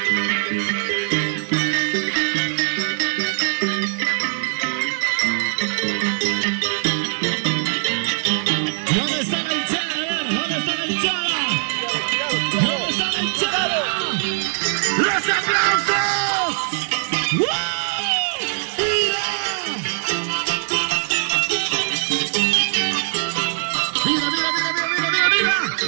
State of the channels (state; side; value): silent; left; digital silence